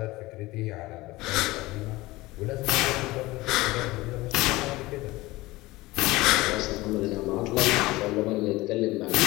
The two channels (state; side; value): quieter; right; 19.8 dB